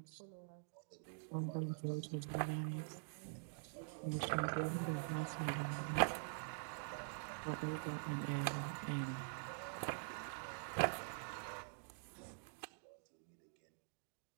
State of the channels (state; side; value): silent; left; digital silence